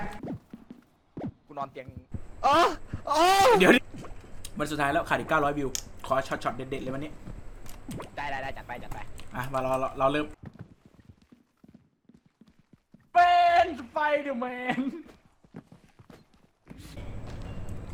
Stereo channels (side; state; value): both; identical; correlation 1.00